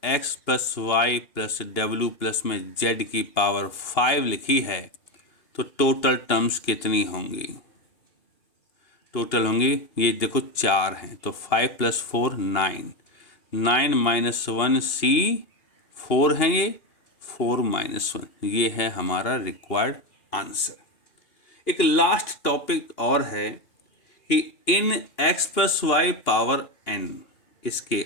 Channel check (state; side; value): late; right; 2.8 ms